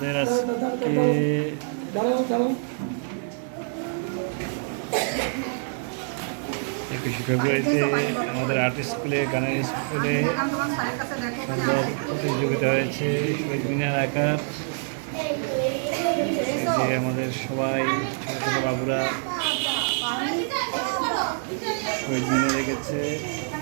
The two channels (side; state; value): left; silent; 61 dB below the other